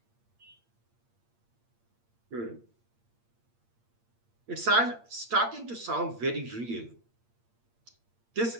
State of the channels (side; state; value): left; late; 8.6 ms